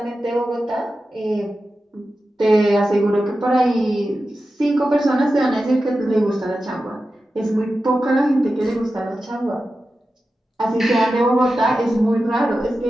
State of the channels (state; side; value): normal; both; correlation 0.92